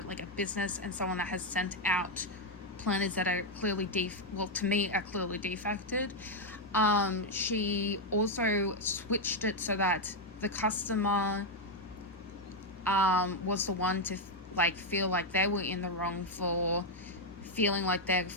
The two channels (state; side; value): normal; both; correlation 0.02